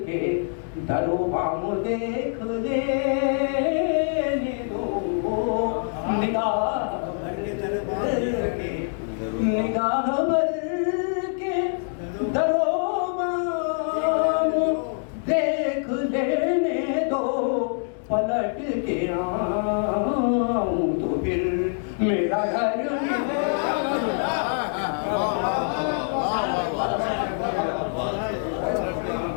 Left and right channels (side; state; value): right; silent; 62 dB below the other